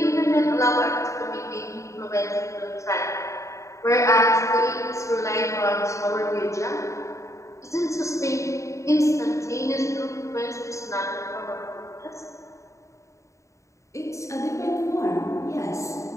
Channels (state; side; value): late; right; 0.15 ms